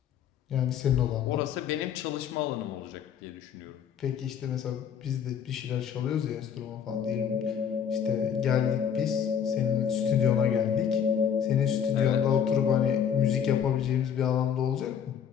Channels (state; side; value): quieter; right; 8.1 dB